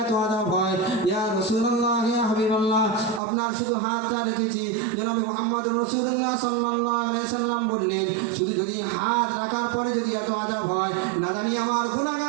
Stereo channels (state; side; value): drops out; left; at 3.2 s